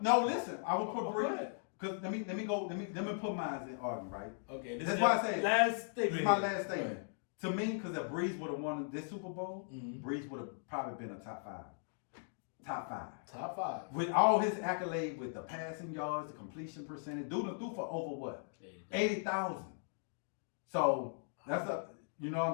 listen, I will put Go Breeze ahead. because let me put mine in argument, right? Okay, this That's is why your I say last This statement. is my here. last Go statement. ahead. To me, because if Breeze would have won this Super Bowl, Mhm. Breeze would have probably been a top 5. Top 5. Top 5. With all his accolades, with the passing yards, the completion percentage, dude threw for over what? 80,000. So that's you know what I'm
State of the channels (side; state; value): right; silent; digital silence